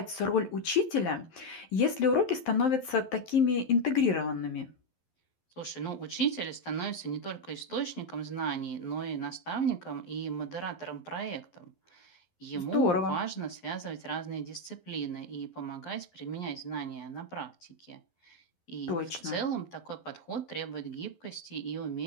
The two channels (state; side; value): late; right; 11 ms